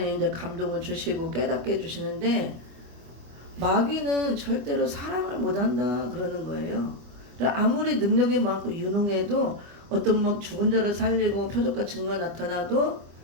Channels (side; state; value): left; late; 25 ms